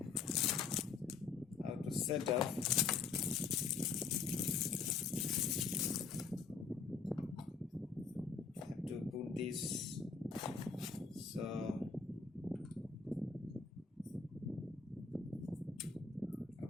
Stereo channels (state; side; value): quieter; right; 5.2 dB